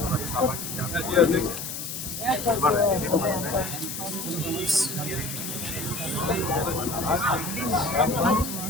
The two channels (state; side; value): noise; left; hiss, 6 dB below the sound